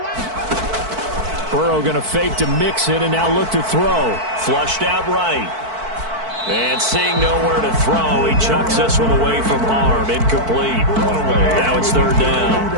Burrow going to fake to mix it and now look to throw. Flushed out right. And seeing nowhere to throw, he chucks this one away from harm. Incomplete. Now it's 3rd down.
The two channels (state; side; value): late; left; 4.5 ms